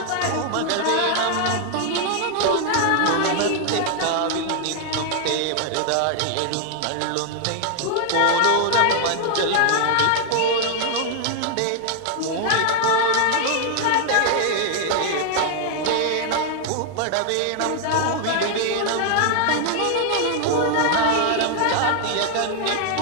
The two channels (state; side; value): different; both; correlation 0.00